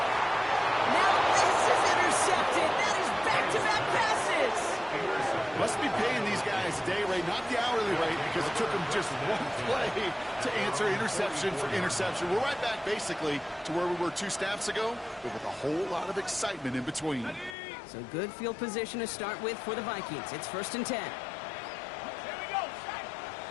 Now this is intercepted. That is back-to-back passes. Must be paying these guys day rate, not the hourly rate, because it took them just one play to answer interception for interception. We're right back, basically, to where we were 2 snaps ago, but with a whole lot of excitement in between. So good field position to start with for the Vikings. It's 1st and 10.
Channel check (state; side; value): drops out; right; at 17.6 s